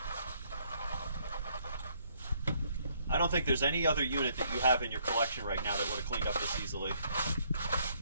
I don't think there's any other unit that you have in your collection right now that would have cleaned up this easily.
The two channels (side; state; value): both; inverted; correlation -0.68